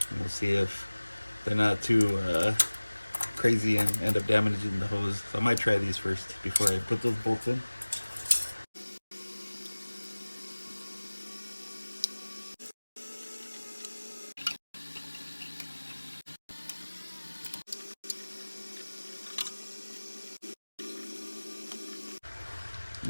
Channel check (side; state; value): both; inverted; correlation -1.00